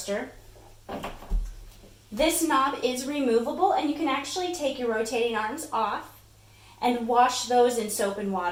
This knob is removable and you can actually take your rotating arms off and wash those in soap and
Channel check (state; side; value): identical; both; correlation 1.00